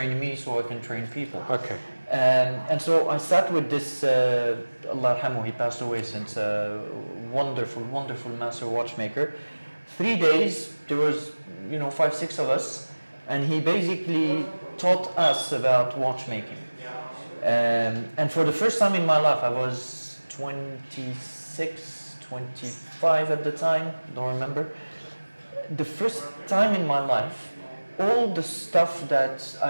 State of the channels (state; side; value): inverted; both; correlation -1.00